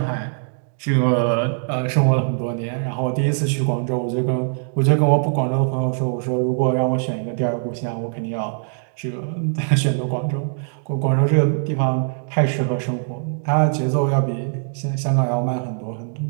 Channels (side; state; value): left; silent; digital silence